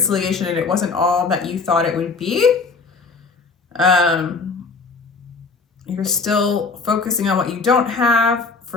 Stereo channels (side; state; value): right; quieter; 4.4 dB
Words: and it wasn't all that you thought it would be. You're still focusing on what you don't have.